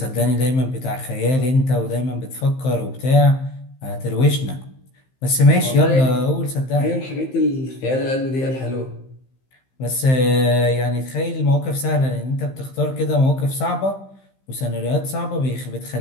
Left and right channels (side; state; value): right; late; 15 ms